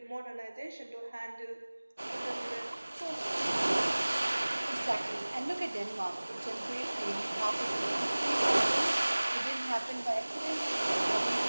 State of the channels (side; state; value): both; inverted; correlation -1.00